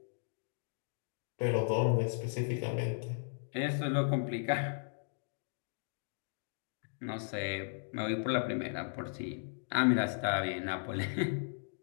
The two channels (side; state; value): right; silent; digital silence